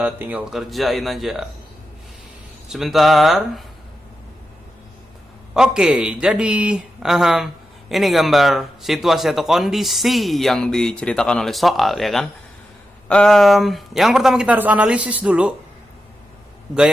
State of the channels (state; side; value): normal; both; correlation 0.89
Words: tinggal kerjain aja. Sebentar. Oke, jadi ini gambar situasi atau kondisi yang diceritakan oleh soal ya kan. Yang pertama kita harus analisis dulu